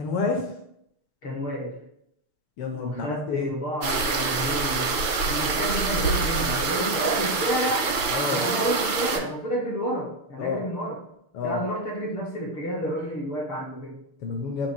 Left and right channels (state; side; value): late; right; 6.7 ms